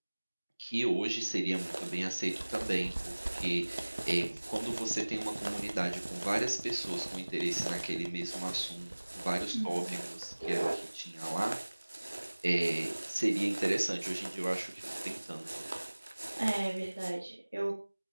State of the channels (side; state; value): both; inverted; correlation -1.00